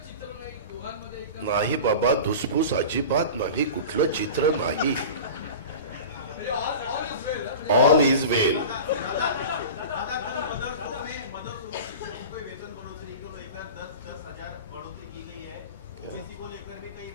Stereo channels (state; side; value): inverted; both; correlation -0.34